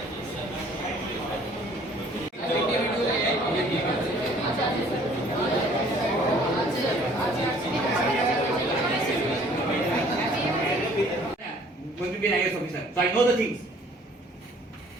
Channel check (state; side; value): normal; both; correlation 0.56